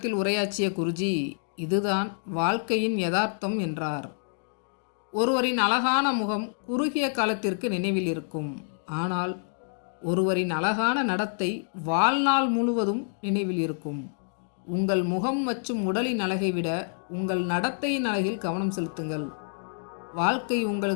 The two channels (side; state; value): right; silent; digital silence